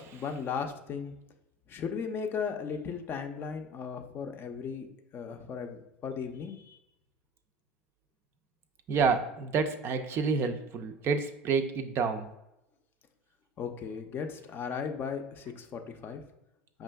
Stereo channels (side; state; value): both; normal; correlation 0.42